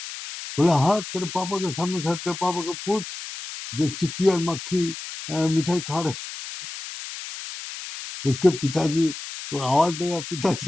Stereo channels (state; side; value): noise; left; hiss, 10 dB below the sound